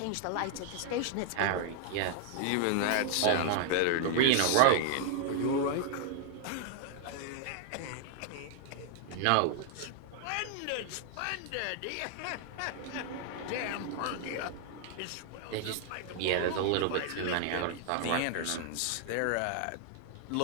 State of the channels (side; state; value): both; different; correlation 0.00